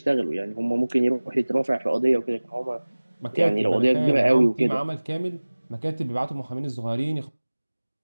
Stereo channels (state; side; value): inverted; both; correlation -1.00